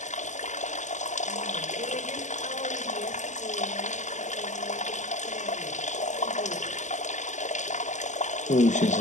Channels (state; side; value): late; right; 0.34 ms